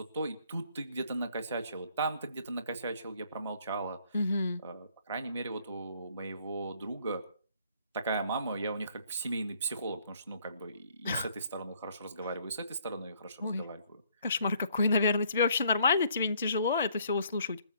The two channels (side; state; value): both; inverted; correlation -0.64